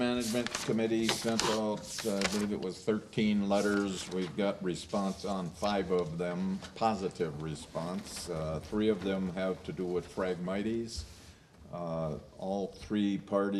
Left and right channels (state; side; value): identical; both; correlation 1.00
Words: Committee sent out, I believe it was 13 letters. We've got response on 5 of them, positive response. 3 of them have to do with Phragmites. All 3